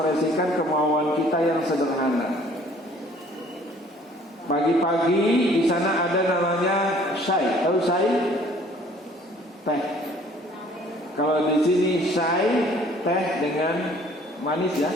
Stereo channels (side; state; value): both; normal; correlation 0.55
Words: kemauan kita yang sederhana. Pagi-pagi di sana ada namanya syai. Tahu syai? Teh. Kalau di sini syai teh dengan manis ya,